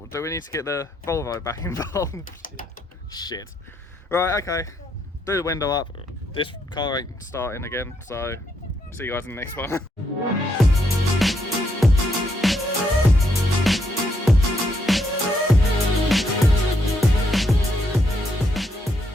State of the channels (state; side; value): normal; both; correlation 0.76